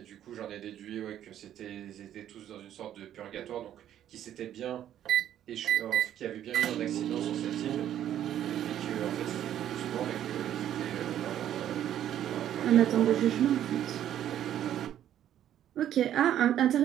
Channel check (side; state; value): left; quieter; 11.1 dB